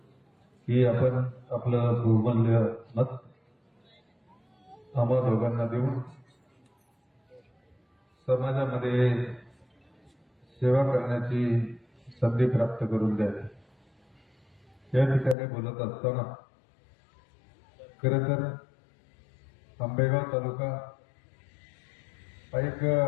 की आपण आपलं बहुमूल्य मत आम्हा दोघांना देऊन समाजामध्ये सेवा करण्याची संधी प्राप्त करून द्यावी। या ठिकाणी बोलत असताना खरं तर आंबेगाव तालुका हा एक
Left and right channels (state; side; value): drops out; right; at 15.4 s